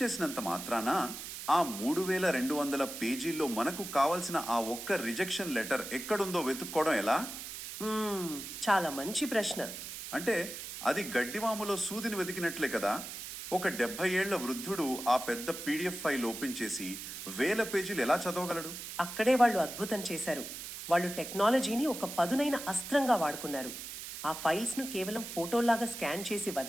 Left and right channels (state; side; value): noise; right; hiss, 9 dB below the sound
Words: మాత్రాన ఆ 3200 పేజీల్లో మనకు కావలసిన ఆ ఒక్క రిజెక్షన్ లెటర్ ఎక్కడుందో వెతుక్కోవడం ఎలా? చాలా మంచి ప్రశ్న. అంటే అది గడ్డివాములో సూదిని వెతికినట్లే కదా. ఒక 70 ఏళ్ల వృద్ధుడు ఆ పెద్ద పీడిఎఫ్ ఫైల్ ఓపెన్ చేసి 1000 పేజీలు ఎలా చదవగలడు? అక్కడే వాళ్ళు అద్భుతం చేశారు. వాళ్ళు టెక్నాలజీని ఒక పదునైన అస్త్రంగా వాడుకున్నారు. ఆ ఫైల్స్ను కేవలం ఫోటోలాగా స్కాన్ చేసి